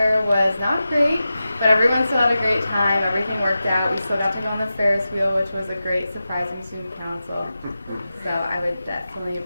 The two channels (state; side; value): inverted; both; correlation -0.92